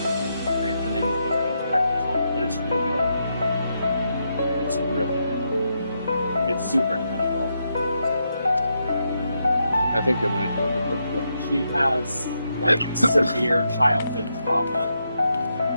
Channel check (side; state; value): both; inverted; correlation -0.82